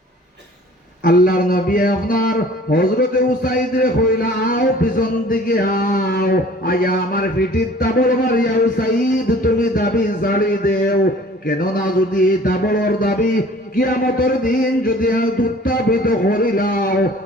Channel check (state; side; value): normal; both; correlation 0.50